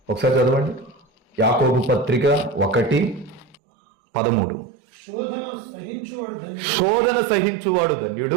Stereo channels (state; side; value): drops out; left; at 3.6 s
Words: ఒకసారి చదవండి. యాకోబు పత్రిక 1:13. శోధన సహించువాడు